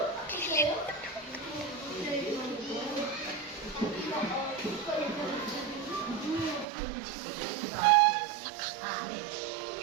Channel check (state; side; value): drops out; left; at 6.7 s